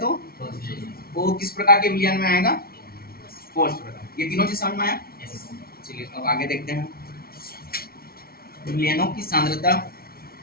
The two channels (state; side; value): late; right; 0.44 ms